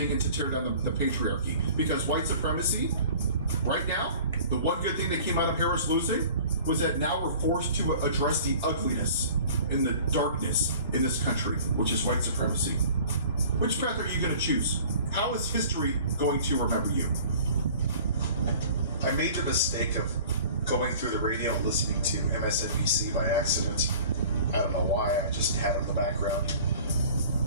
and to tear down the patriarchy. Because white supremacy, right now, the one good thing that came out of Harris losing was that now we're forced to address the ugliness and the darkness in this country, which is white supremacy. Which path are you going to choose? How is history going to remember you? I made the mistake of going through the radio and listening to MSNBC by accident. I don't know why, I just had it in the background.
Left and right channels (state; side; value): inverted; both; correlation -0.46